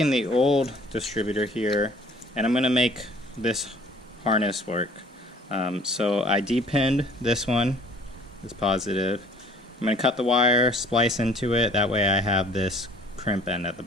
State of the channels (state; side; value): normal; both; correlation 0.53